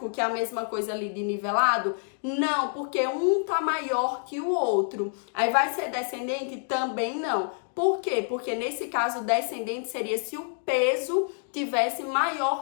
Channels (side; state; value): right; silent; digital silence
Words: que é a mesma coisa ali de nivelado? Não, porque um está maior que o outro. Aí vai ser descendente? Também não. Por quê? Porque nesse caso, descendente seria se o peso tivesse